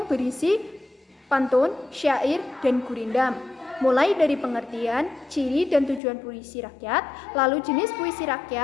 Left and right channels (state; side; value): drops out; right; at 6.0 s